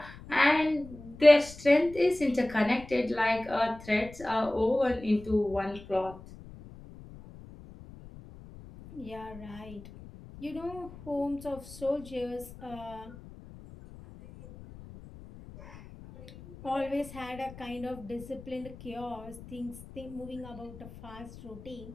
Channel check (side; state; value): left; noise; rumble, 17 dB below the sound